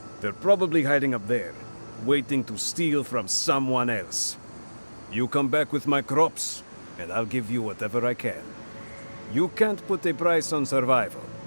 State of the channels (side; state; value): both; inverted; correlation -1.00